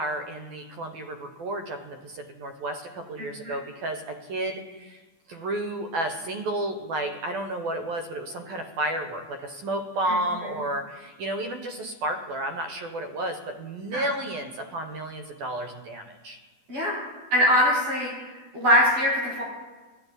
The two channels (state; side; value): late; left; 12 ms